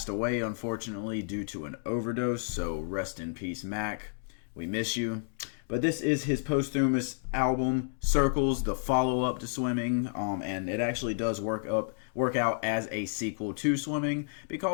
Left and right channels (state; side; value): silent; right; digital silence